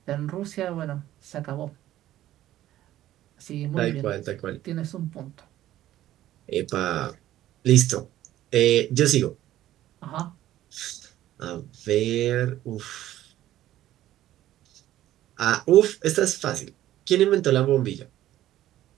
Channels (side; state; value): left; quieter; 13.7 dB